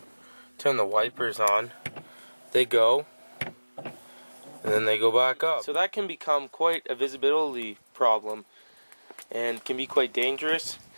turn the wipers on, they go, and then they go back up. So that can become quite a visibility problem, and can be quite dangerous.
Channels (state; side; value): inverted; both; correlation -1.00